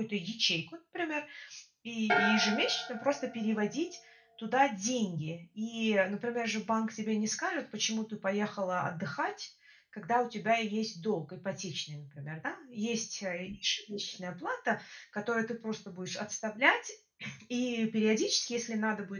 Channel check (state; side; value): identical; both; correlation 1.00